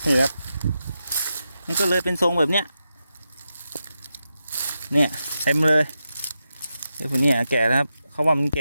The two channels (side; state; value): both; inverted; correlation -0.88